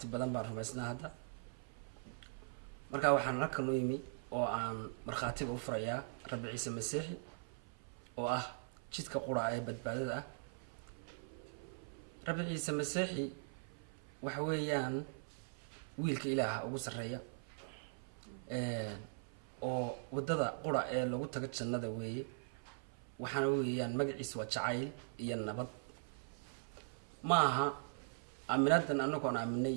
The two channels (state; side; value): silent; left; 50 dB below the other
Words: badan baan rumaysnaa hadda markaa waxaan halkan u yimi oo aan markhaatiga u furayaa rabbi ciise masiixi oo ah jidka qura ee badbaadada ah rabbi ciise masiixi waxa weeyaan wiilka ilaaha ugu sarreeya oo wadada qura ee lagu tago jannada weeye waxaana weeyaan magaciisa waa jacayl iyo nabad ma aha aaminadan anagoon aaminay